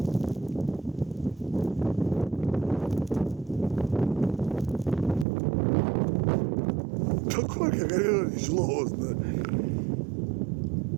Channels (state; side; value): drops out; left; at 5.2 s